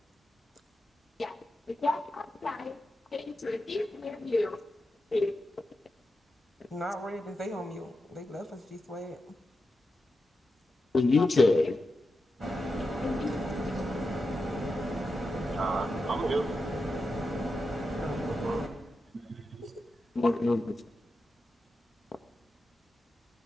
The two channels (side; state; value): both; normal; correlation 0.89